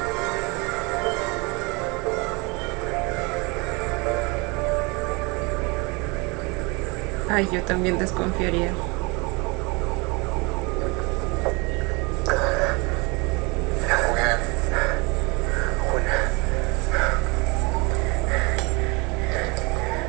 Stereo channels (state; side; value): quieter; left; 27.8 dB